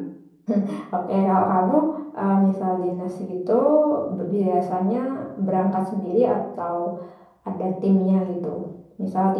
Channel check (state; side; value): identical; both; correlation 1.00